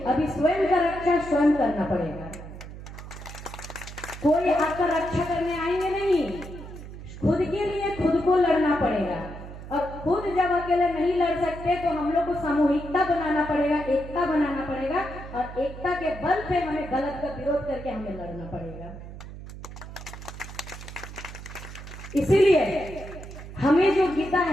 अभी स्वयं का रक्षा स्वयं करना पड़ेगा। कोई आपका रक्षा करने आएंगे नहीं, खुद के लिए खुद को लड़ना पड़ेगा। और खुद जब अकेले नहीं लड़ सकते तो हम लोग को सामूहिकता बनाना पड़ेगा, एकता बनाना पड़ेगा, और एकता के बल पे हमें गलत का विरोध करके हमें लड़ना पड़ेगा। इसीलिए हमें जो गीता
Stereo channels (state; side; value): noise; right; hum, 12 dB below the sound